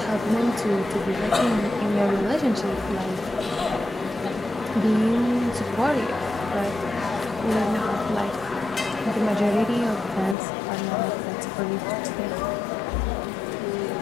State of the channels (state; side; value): drops out; right; at 10.4 s